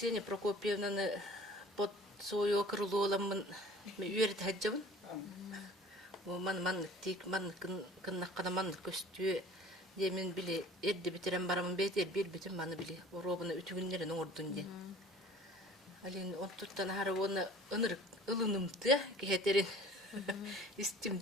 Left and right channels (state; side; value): normal; both; correlation 0.48